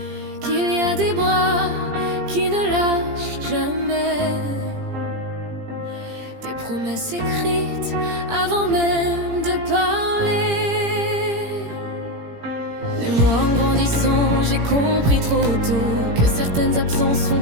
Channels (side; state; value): left; late; 17 ms